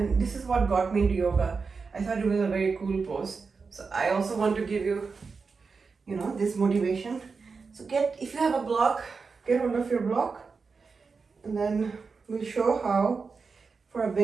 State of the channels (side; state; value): left; quieter; 4.8 dB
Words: this is what got me into yoga. I thought it was a very cool pose. So I also want to give you, this motivation. So if you have a block, get hold of your block, and then we'll show how, for a